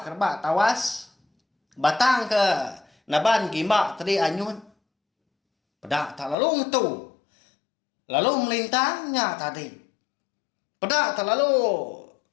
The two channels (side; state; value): right; drops out; at 6.4 s